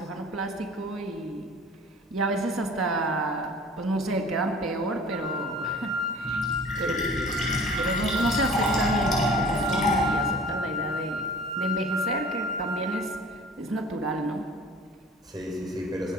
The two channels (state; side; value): normal; both; correlation 0.45